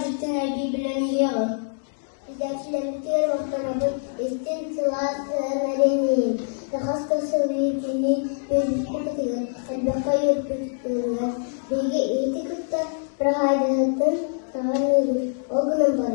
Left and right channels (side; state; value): right; silent; digital silence